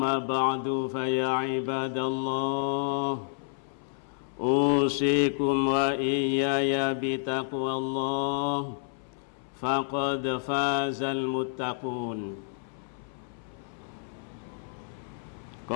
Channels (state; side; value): silent; right; 58 dB below the other